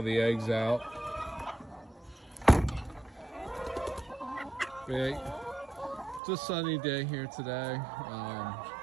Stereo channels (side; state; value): left; drops out; at 6.2 s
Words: the eggs out. It's a sunny day here today,